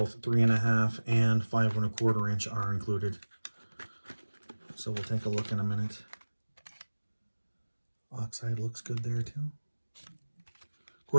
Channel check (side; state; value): both; inverted; correlation -1.00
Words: 3.5 and 5 1/4 inch are included. So we'll take a look in a minute. Oxide looks good there too. Of